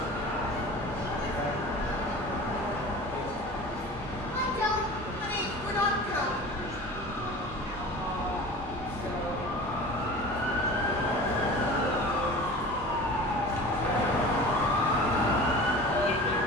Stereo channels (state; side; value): normal; both; correlation 0.37